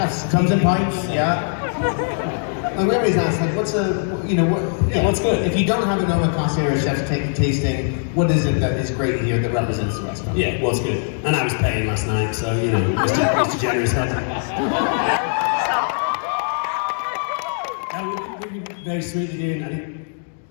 Comes in pints, yeah. Like we always ask, what's what's good? If you don't have an omakase or a chef's tasting, what is it that is great here that represents the restaurant? Yeah, what's good? And I was paying last night, so Mr. Generous head. We'd be very sweet to do. I think,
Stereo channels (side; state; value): right; silent; 65 dB below the other